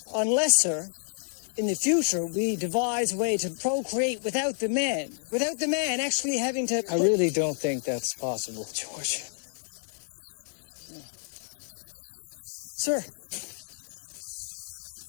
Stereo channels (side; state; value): right; silent; 58 dB below the other